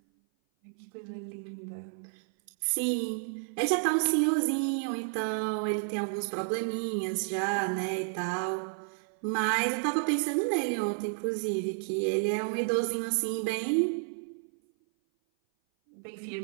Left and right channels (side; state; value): left; silent; 56 dB below the other